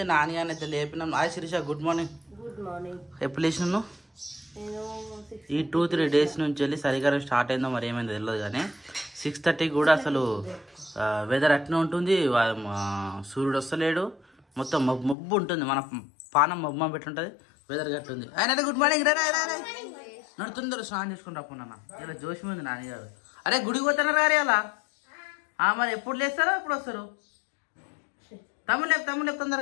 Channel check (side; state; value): right; drops out; at 15.2 s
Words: నాని అని అయితే లేపినాం. Hi Sirisha, good morning. ఎప్పుడు లేచినాను? ఈ 2-3 డేస్ నుంచి వెళ్ళి చలికాలం స్టార్ట్ అయిందో మరి ఏమైందో తెలియదు కానీ 6:30 కూడా అసలు వెదర్ అట్నే ఉంటుంది. సూర్యుడు వస్తలేడు, మొత్తం మబ్బు ఉంటుంది. మన పానం మబ్బు పెట్టుంటుంది, వెదర్ గట్టుంది. ఆయన గుడ్ మార్నింగ్. నడుతుందరు స్నానం చేసుకుని రాకున్నా. ఇలా జోషి ఉంది నాన్నగారు. అరే గుడికి పోతున్నారు గారు అలా. మరి ఎప్పుడు లేస్తారో ఎప్పుడు వస్తారు? తమ్ముడు